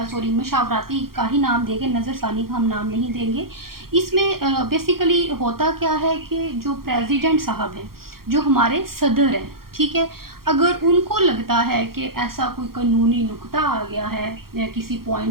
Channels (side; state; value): left; late; 0.93 ms